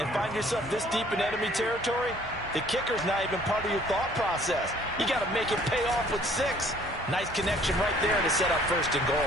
find yourself this deep in enemy territory, the kicker's not even part of your thought process. You got to make it pay off with 6. Nice connection right there to set up 1st and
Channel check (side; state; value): both; normal; correlation 0.57